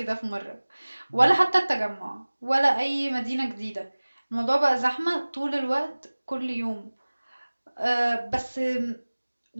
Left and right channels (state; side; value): inverted; both; correlation -1.00